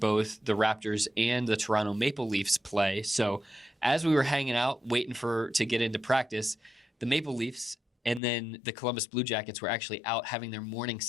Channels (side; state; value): right; drops out; at 8.2 s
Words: the Raptors and the Toronto Maple Leafs play. So as we were hanging out, waiting to get into practice, the Maple Leafs and then the Columbus Blue Jackets were actually out having their morning